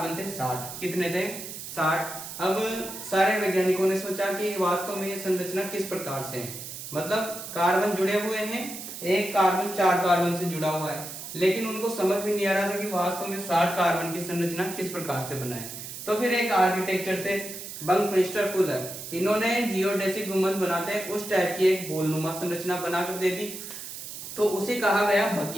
थे 60। कितने थे? 60। अब सारे वैज्ञानिकों ने सोचा कि वास्तव में ये संरचना किस प्रकार से है, मतलब कार्बन जुड़े हुए हैं, एक कार्बन 4 कार्बन से जुड़ा हुआ है, लेकिन उनको समझ में नहीं आ रहा था कि वास्तव में 60 कार्बन की संरचना किस प्रकार से बनाए। तो फिर एक आर्किटेक्चर थे बंकमिंस्टर फुलर, इन्होंने जियोडेसिक गुंबद बनाते हैं उस टाइप की एक बोलनुमा संरचना बनाकर दे दी। तो उसे कहा गया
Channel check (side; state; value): right; noise; hiss, 10 dB below the sound